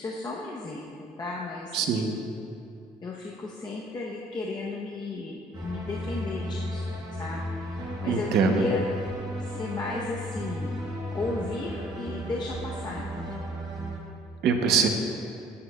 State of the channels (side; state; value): both; normal; correlation 0.58